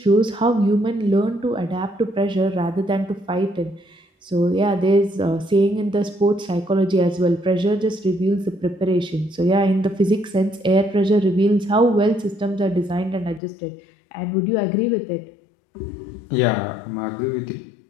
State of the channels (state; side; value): drops out; right; at 13.4 s